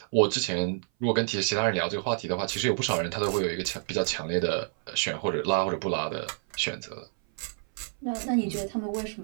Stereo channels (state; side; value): silent; left; 57 dB below the other